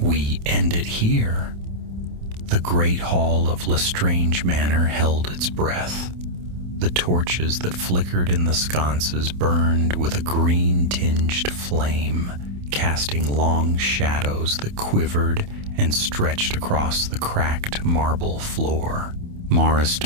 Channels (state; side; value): late; left; 28 ms